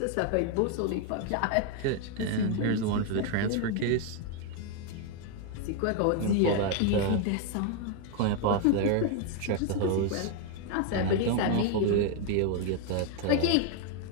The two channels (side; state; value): both; different; correlation 0.01